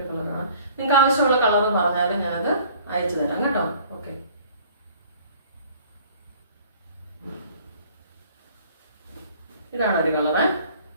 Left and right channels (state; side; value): inverted; both; correlation -0.53